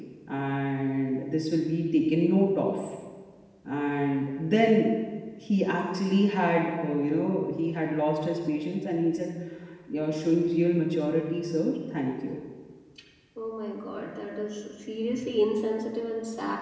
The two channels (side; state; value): both; identical; correlation 1.00